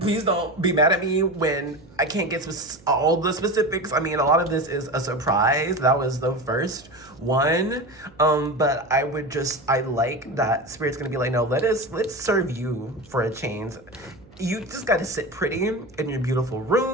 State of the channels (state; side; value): noise; right; hum, 25 dB below the sound